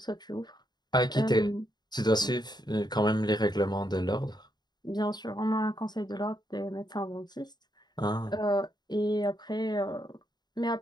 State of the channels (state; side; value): late; right; 0.20 ms